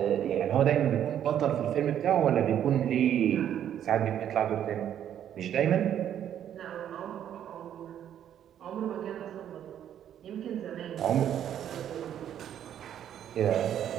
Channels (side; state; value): left; quieter; 10.1 dB